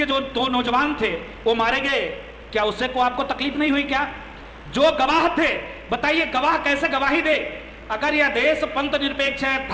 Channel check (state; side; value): identical; both; correlation 1.00